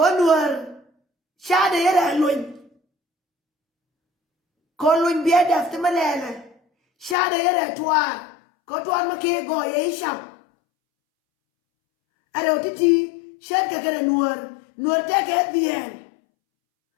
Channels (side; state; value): right; drops out; at 7.2 s